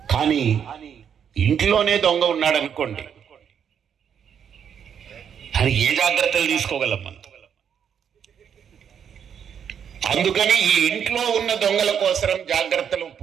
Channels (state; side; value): quieter; left; 8.0 dB